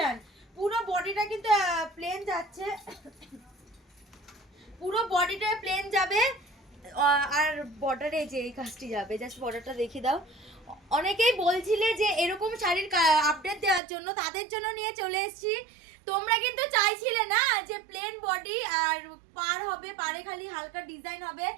পুরো বডিটা কিন্তু প্লেন যাচ্ছে, পুরো বডিটা প্লেন যাবে আর বর্ডারে যে এই কাজটি যাবে, জাস্ট বর্ডারটা দেখিয়ে দাও। অনেকেই বলছিলে যে এরকম শাড়ির আপডেট দেওয়ার জন্য, তাদের জন্য নিয়ে চলে এসেছি। তোমরা কিন্তু চাইছিলে না যে প্লেন বডি আর পার হবে, পারে খালি হালকা ডিজাইন হবে,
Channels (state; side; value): drops out; left; at 13.8 s